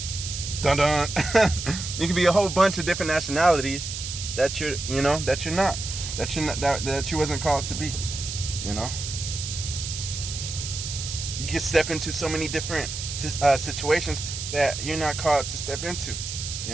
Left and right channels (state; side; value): noise; right; hiss, 6 dB below the sound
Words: dun. You could be a whole bunch of different nationalities that you're not, that you wasn't called to be. You know, you can step into so many different situations that you're not called to step into.